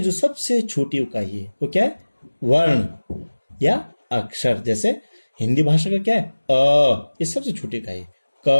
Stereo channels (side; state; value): both; inverted; correlation -1.00